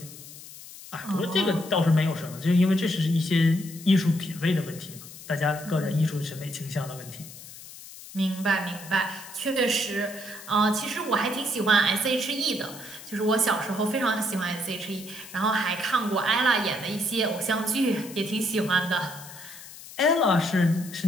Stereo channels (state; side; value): noise; left; hiss, 16 dB below the sound